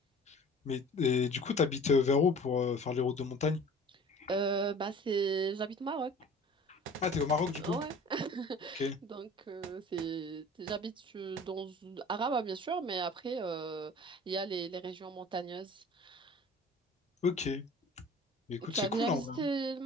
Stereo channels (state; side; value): normal; both; correlation 0.45